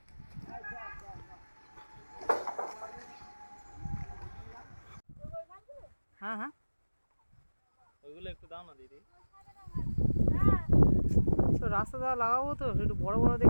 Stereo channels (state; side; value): inverted; both; correlation -1.00